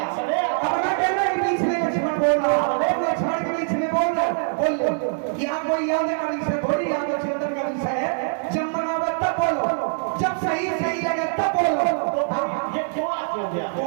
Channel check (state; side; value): silent; left; digital silence